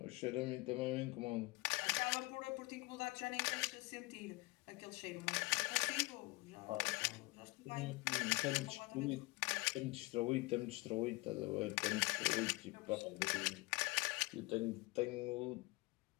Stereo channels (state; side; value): quieter; right; 23.9 dB